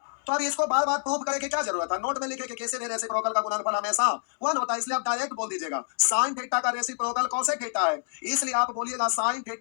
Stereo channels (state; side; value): silent; right; digital silence